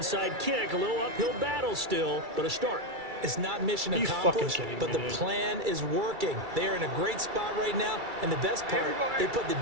kick. A little uphill battle still, but a start. It's not mission Are you accomplished, fucking kidding but me, the dude? plan is working. They are in a great spot right now, and the best part, they put the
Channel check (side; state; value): left; late; 2.3 ms